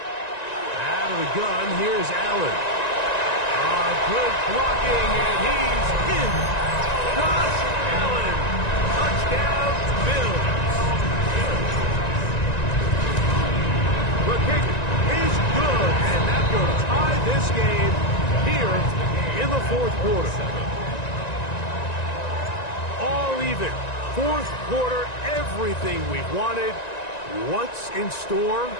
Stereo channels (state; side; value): late; right; 1.9 ms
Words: Out of the gun, here's Allen. Good blocking, and he's in. Josh Allen. Touchdown, Bills. The kick is good, and that will tie this game here in the 4th quarter. All even. 4th quarter, everything we've wanted. What's in store